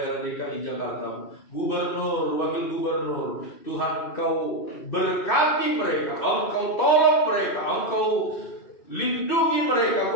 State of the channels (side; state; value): right; late; 2.6 ms